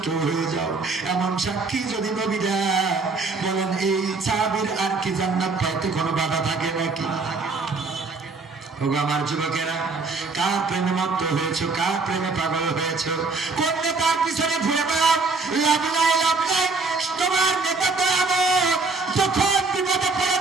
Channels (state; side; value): quieter; left; 4.0 dB